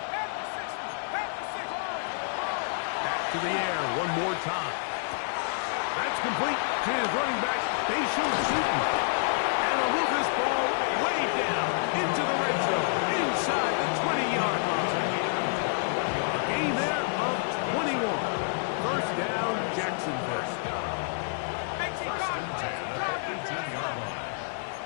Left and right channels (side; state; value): right; silent; digital silence